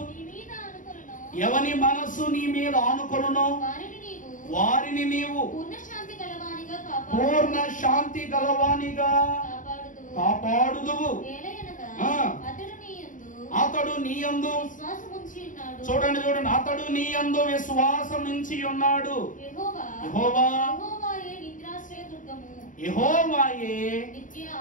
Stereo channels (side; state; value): right; late; 0.38 ms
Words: నీ మీద ఆనుకొనునో పూర్ణ శాంతి గలవానిగా కాపాడుదువు. అతడు నీ యందు చూడండి, అతడు నీ యందు విశ్వాసం నుంచి ఉన్నాడు. యెహోవాయే